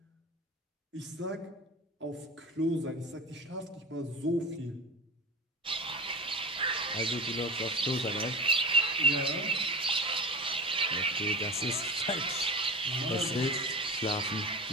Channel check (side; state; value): both; normal; correlation 0.30